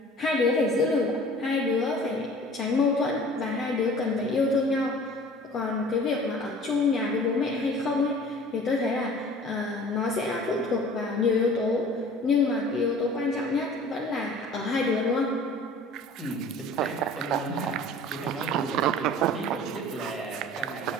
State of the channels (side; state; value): both; normal; correlation 0.45